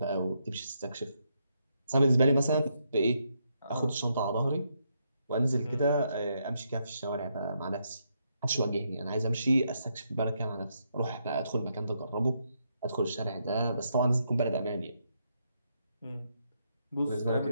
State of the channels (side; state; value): both; inverted; correlation -0.78